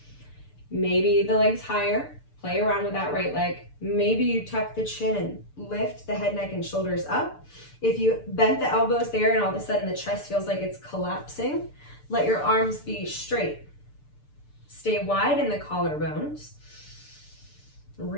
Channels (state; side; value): late; right; 6.8 ms